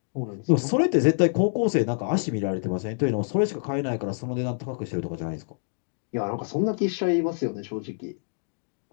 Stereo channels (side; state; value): right; silent; digital silence